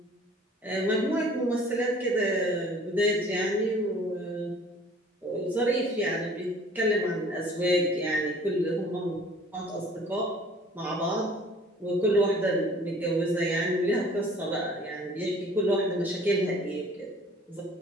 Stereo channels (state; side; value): normal; both; correlation 0.51